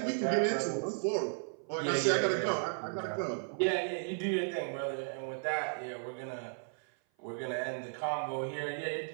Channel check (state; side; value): silent; left; 55 dB below the other